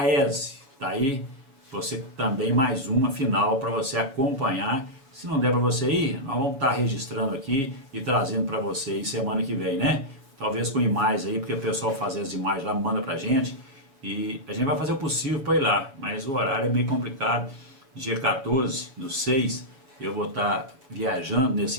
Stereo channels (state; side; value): late; left; 7.2 ms